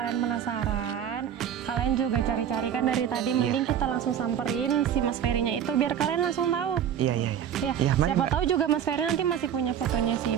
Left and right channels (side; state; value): left; quieter; 9.2 dB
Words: penasaran, kalian juga cari-cari kan dari tadi. Mending kita langsung samperin si Mas Ferry-nya itu biar kalian langsung tahu. Iya. Ya, Iya, mari, siapa Mbak. tahu juga Mas Ferry nanti masih punya fotonya si